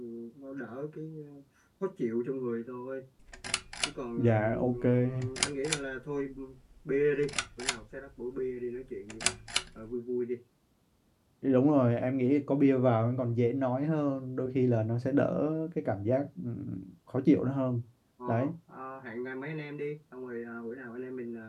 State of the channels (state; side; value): identical; both; correlation 1.00